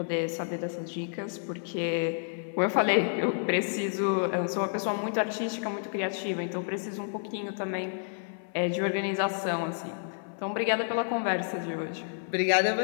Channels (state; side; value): silent; right; 58 dB below the other